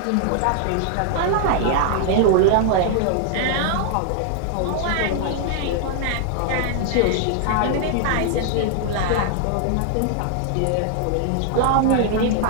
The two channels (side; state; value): both; different; correlation -0.01